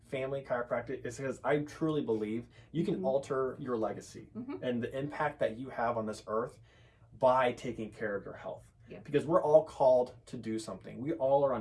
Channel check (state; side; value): identical; both; correlation 1.00